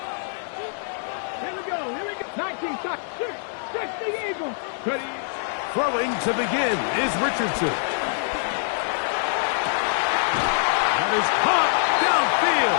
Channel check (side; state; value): right; silent; digital silence